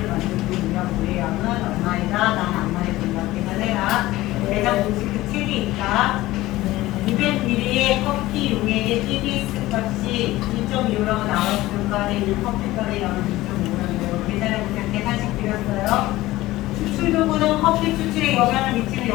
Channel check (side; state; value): right; quieter; 17.4 dB